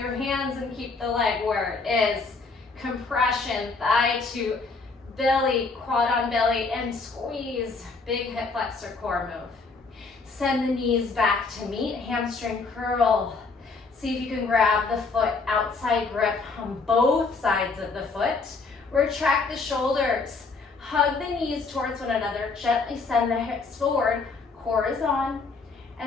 hands and keep the leg where it is? Compression, thigh to belly, quad on belly, and squeeze. Big hip flexor core move. Send the knees back to meet, hamstring curl. See if you can grab the foot outside grip on both sides of the foot. Retract the shoulders. Hug the knees towards one another. Gently send the hips forward. Core is on.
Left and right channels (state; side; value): quieter; right; 4.2 dB